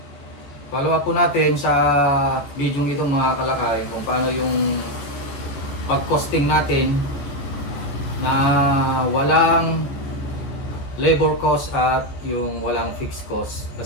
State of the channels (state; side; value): late; right; 14 ms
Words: Follow up po natin sa video ito mga kalakay kung paano yung pag-costing natin na walang labor cost at yung walang fixed cost.